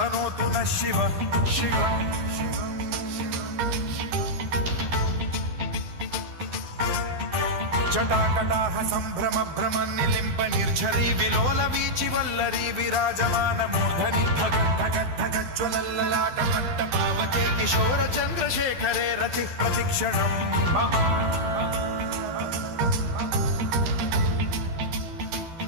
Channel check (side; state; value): left; late; 12 ms